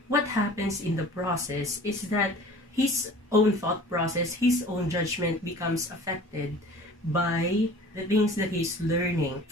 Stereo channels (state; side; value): normal; both; correlation 0.45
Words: what happens in the process is that his own thought process, his own judgment becomes affected by the things that he's learning